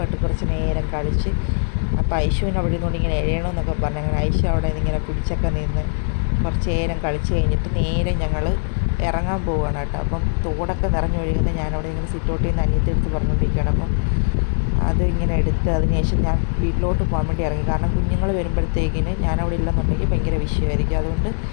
കുറച്ച് നേരം കളിച്ച്, അപ്പോൾ ഐഷുവിന് അവിടെ നിന്നുകൊണ്ട് ഇങ്ങനെ എഴയണമെന്നൊക്കെ പറഞ്ഞു. അങ്ങനെ ഐഷു അവിടെ ഇങ്ങനെ പിടിച്ചൊക്കെ നിന്ന് കുറച്ച് നേരം കളിച്ച് കഴിഞ്ഞിട്ട് നേരെ ഞങ്ങൾ ഇറങ്ങാൻ പോവുകയാണ് കേട്ടോ. അപ്പം തോടൊക്കെ നിറഞ്ഞു ഒഴുകുന്ന ഞാനവിടെ ഇങ്ങനെ സിറ്റൗട്ടിൽ നിന്ന് അനിയത്തെടുത്ത് പറഞ്ഞുകൊണ്ടിരിക്കുകയാണ്. അപ്പം അത് ഇങ്ങനെ എടുത്ത് അതിനുശേഷം ഞാൻ വീട്ടിലോട്ട് പോകാൻ വേണ്ടി ഇറങ്ങി. കാരണം കുഞ്ഞുങ്ങൾ വരുമ്പോഴത്തേക്കിന് ഞാനവിടെ ഇല്ലെന്നുണ്ടെങ്കിൽ ഭയങ്കര വിഷയമായിരിക്കും. അതുകൊണ്ട്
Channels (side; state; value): right; silent; digital silence